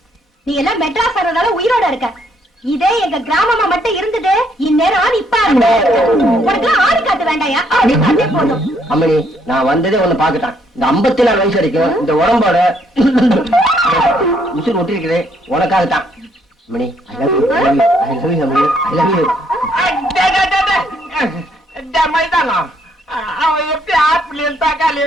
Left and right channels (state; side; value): normal; both; correlation 0.70